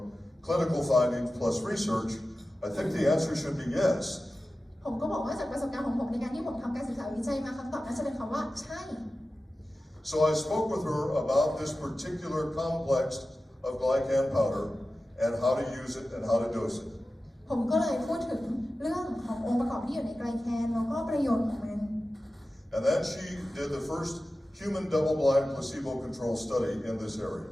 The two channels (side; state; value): both; normal; correlation 0.94